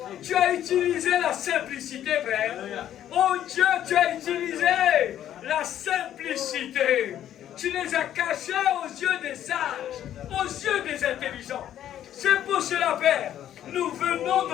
Tu as utilisé la simplicité, Père. Oh Dieu, tu as utilisé la simplicité. Tu les as cachés aux yeux des sages, aux yeux des intelligents. C'est pour cela, Père, nous venons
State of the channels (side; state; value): right; quieter; 11.2 dB